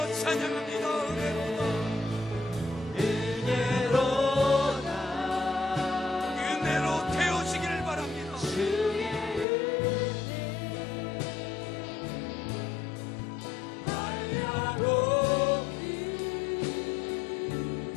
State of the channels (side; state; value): right; drops out; at 9.5 s